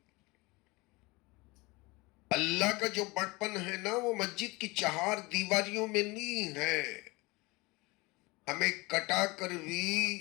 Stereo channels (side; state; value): right; quieter; 24.2 dB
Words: اللہ کا جو بڑپن ہے نا وہ مسجد کی چہار دیواریوں میں نہیں ہے، ہمیں کٹا کر بھی